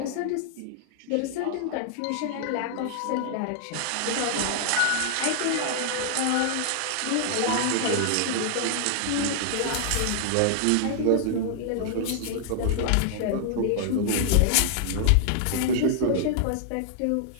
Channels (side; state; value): both; different; correlation -0.01